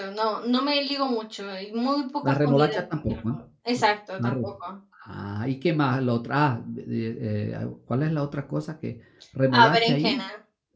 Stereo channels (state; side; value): identical; both; correlation 1.00